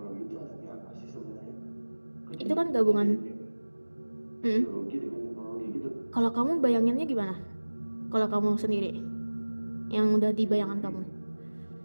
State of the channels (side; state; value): both; inverted; correlation -1.00